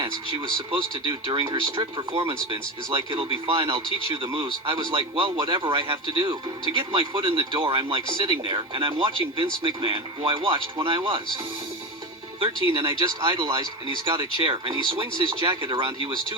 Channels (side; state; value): both; normal; correlation 0.20